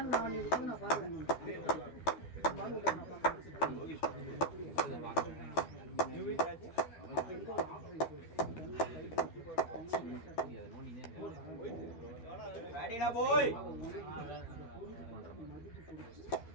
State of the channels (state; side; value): late; right; 12 ms